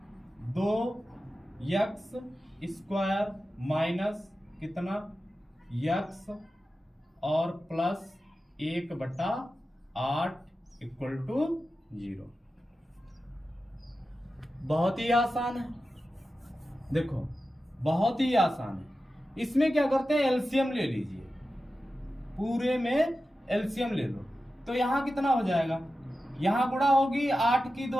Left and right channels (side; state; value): both; normal; correlation 0.93